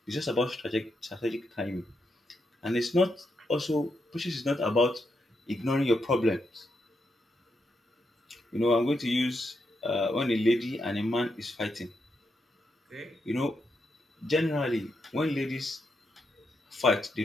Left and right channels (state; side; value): normal; both; correlation 0.82